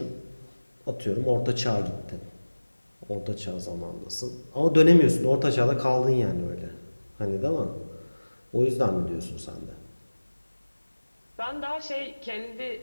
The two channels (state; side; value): inverted; both; correlation -1.00